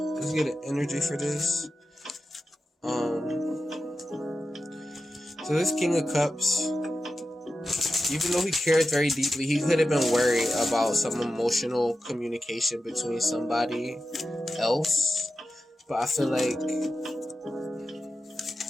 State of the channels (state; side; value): normal; both; correlation 0.92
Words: Let's get an energy for this. So this King of Cups, even though he cared very deeply, he could have been worried about some emotional communication between somebody else. But I feel like,